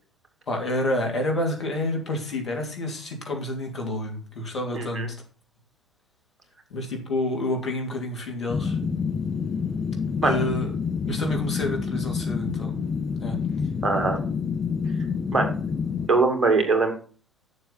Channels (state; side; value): normal; both; correlation 0.53